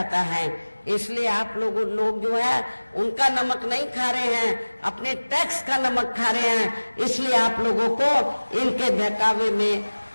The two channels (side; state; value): both; inverted; correlation -1.00